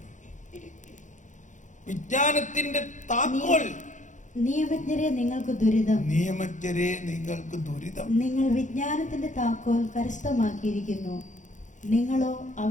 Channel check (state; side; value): late; right; 0.36 ms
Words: വിജ്ഞാനത്തിന്റെ താക്കോൽ. നിയമജ്ഞരെ നിങ്ങൾക്ക് ദുരിതം, നിയമജ്ഞരെ നിങ്ങൾക്ക് ദുരിതം. നിങ്ങൾ വിജ്ഞാനത്തിന്റെ താക്കോൽ കരസ്ഥമാക്കിയിരിക്കുന്നു, നിങ്ങളോ